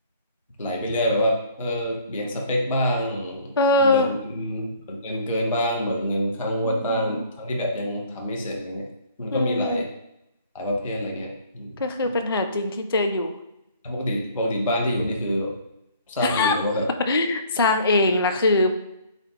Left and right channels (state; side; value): inverted; both; correlation -0.54